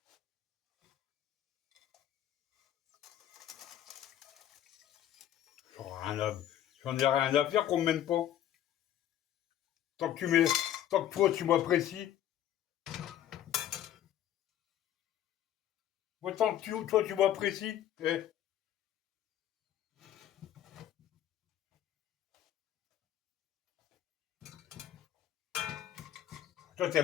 J'en ai rien à faire qu'on me mène pas. Tant que tu mets, tant que toi tu m'apprécies. Moi, tant que toi tu m'apprécies. Eh. Toi,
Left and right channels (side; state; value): right; quieter; 11.4 dB